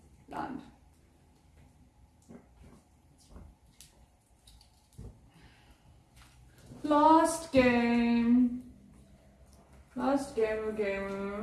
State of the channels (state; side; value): identical; both; correlation 1.00